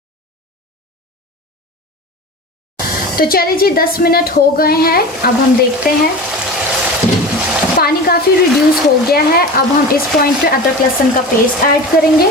तो चलिए जी 10 मिनट हो गए हैं, अब हम देखते हैं। पानी काफ़ी रिड्यूस हो गया है। अब हम इस पॉइंट पे अदरक लहसुन का पेस्ट ऐड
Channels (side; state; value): both; normal; correlation 0.32